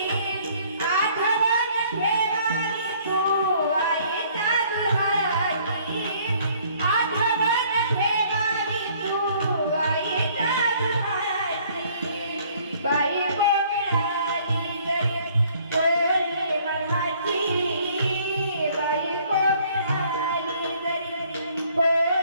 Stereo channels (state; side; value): inverted; both; correlation -0.59